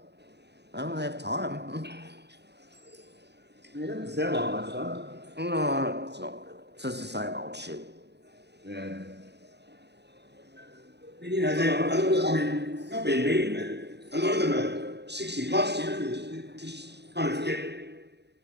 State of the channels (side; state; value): left; late; 0.49 ms